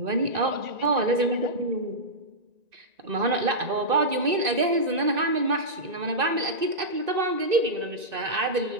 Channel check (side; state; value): left; late; 2.6 ms